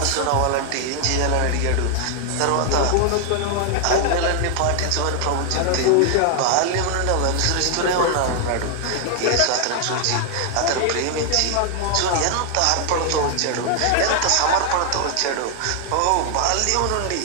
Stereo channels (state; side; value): different; both; correlation 0.00